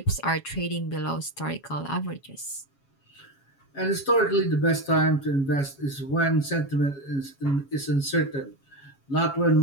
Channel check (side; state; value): right; late; 7.3 ms